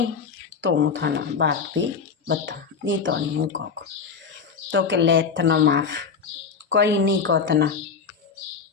तो हूँ थाना बात भी बता नी तो नहीं हूँ को। तो के ले तना माफ कोई नहीं को तना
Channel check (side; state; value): right; quieter; 5.7 dB